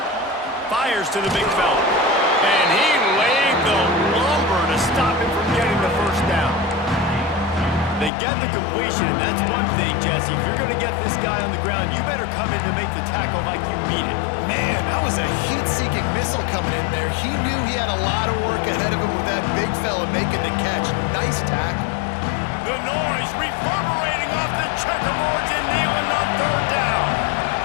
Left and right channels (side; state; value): right; drops out; at 8.1 s